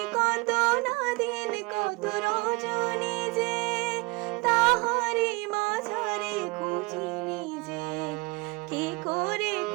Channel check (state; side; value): quieter; left; 25.6 dB